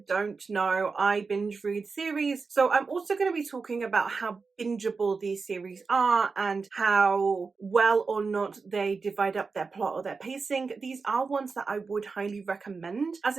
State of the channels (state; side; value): quieter; left; 4.6 dB